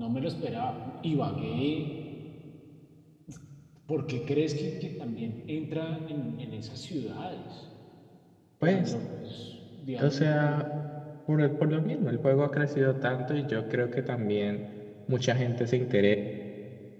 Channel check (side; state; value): both; identical; correlation 1.00